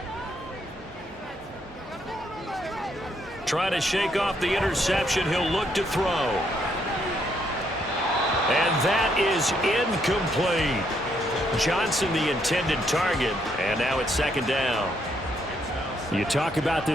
Trying to shake off the interception. He'll look to throw. And that is incomplete. Johnson the intended target. And now it's 2nd down. You talk about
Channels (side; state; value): both; normal; correlation 0.73